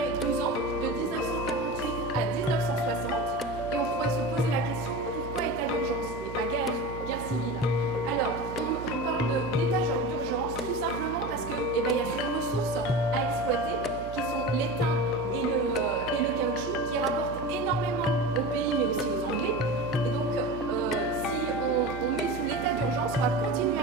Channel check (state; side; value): noise; right; hum, 11 dB below the sound